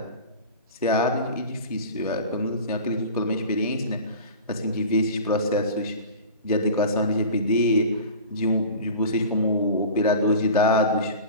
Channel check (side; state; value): both; inverted; correlation -0.36